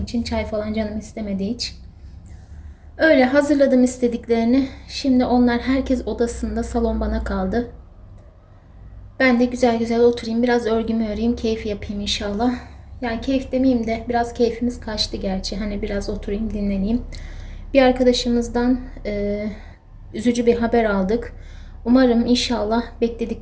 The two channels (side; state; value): both; identical; correlation 1.00